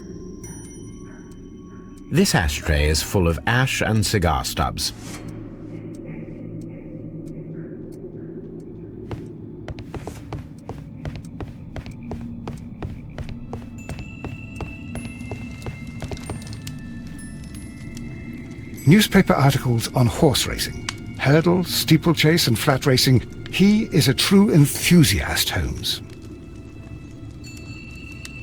This ashtray is full of ash and cigar stubs. Newspaper articles on horse racing. Hurdle, steeplechase and flat racing. He is a true enthusiast, Holmes.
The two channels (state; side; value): identical; both; correlation 1.00